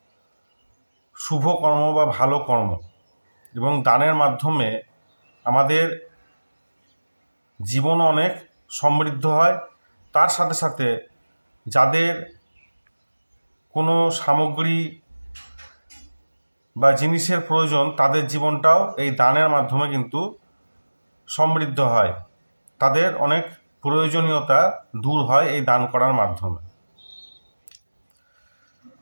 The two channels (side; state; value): both; inverted; correlation -1.00